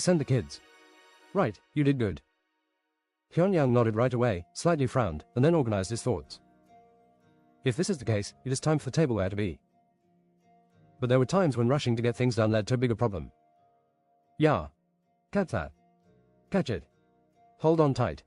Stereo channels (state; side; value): identical; both; correlation 1.00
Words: the kids. Right, you did good. Hyun-young nodded right away, slightly frowned, and then organized his thoughts. If this is the case, it is time for the tableware to be. But there were times when rushing to get things done led to a bigger problem. Yeah. Catch that. Catch it. Hold on tight.